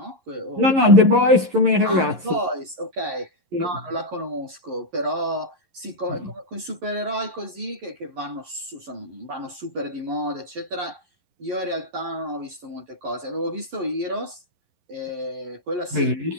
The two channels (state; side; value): late; left; 11 ms